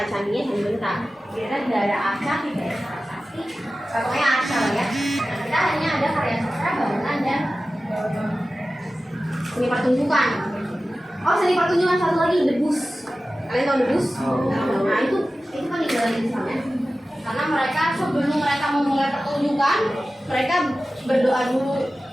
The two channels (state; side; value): normal; both; correlation 0.95